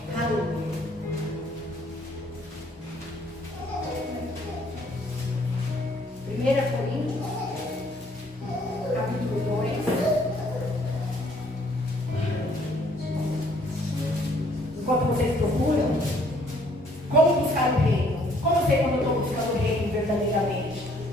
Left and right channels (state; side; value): normal; both; correlation 0.63